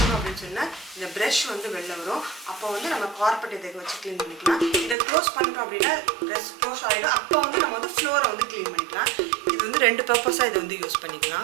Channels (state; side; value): drops out; left; at 5.0 s